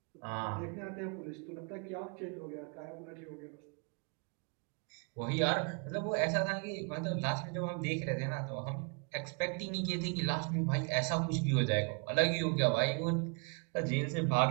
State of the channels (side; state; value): left; quieter; 37.6 dB